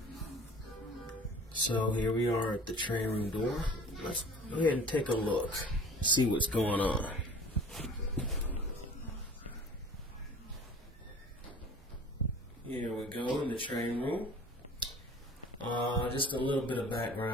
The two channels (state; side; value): normal; both; correlation 0.45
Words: So here we are at the train room door. Let's go ahead and take a look, see what's going on. Here we go in the train room. Just a little bit of